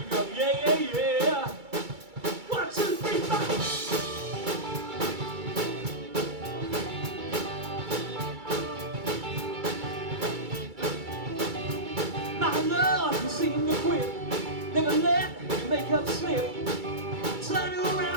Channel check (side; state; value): left; late; 2.3 ms